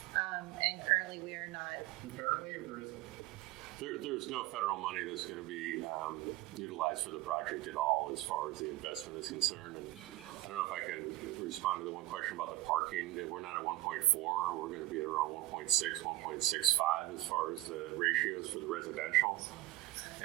And currently we are not. Apparently, or there isn't? There's no federal money that's going to be utilized for the project at all as far as the investment is concerned. And I don't know if I can respond to the one question about the parking. We're not at 1.4. We're going to be at around 1.6, 1.65 as far as the ratios for the residential.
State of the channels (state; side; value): quieter; left; 16.9 dB